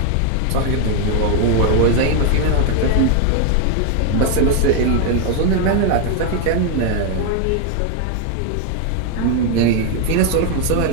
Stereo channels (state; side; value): different; both; correlation 0.01